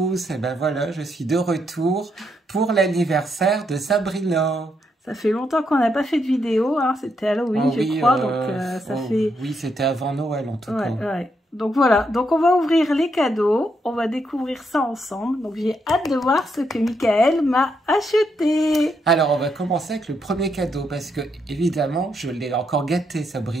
et ben voilà, je suis de retour pour l'anniversaire de Sabrina. Ça fait longtemps qu'on n'a pas fait de vidéo, hein. C'était Halloween, je crois, donc ça fait... Oui, c'était avant Noël en tout cas. Ouais. Donc voilà, donc on va ouvrir les cadeaux, on va découvrir ça ensemble. Donc j'ai hâte de voir ce que Michael m'a acheté. Alors on va commencer avec le premier cadeau, parce que évidemment, je l'ai encore gâté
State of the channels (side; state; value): both; normal; correlation 0.78